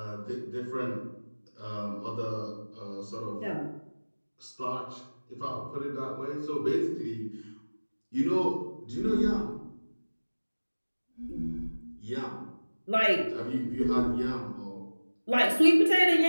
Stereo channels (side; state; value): both; inverted; correlation -1.00